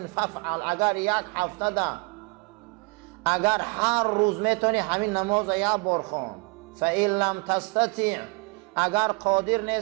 فافعل. اگر یک هفته ده، اگر هر روز میتونی همین نماز یک بار خوان. فإن لم تستطع، اگر قادر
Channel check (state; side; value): quieter; left; 30.0 dB